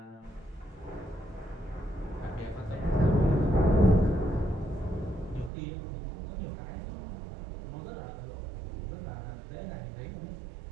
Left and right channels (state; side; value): drops out; left; at 5.5 s